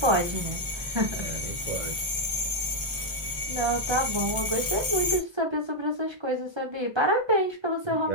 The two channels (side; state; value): left; late; 1.2 ms